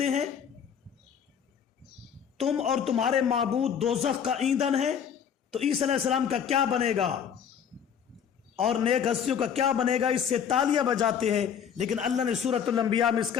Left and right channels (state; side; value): quieter; right; 8.0 dB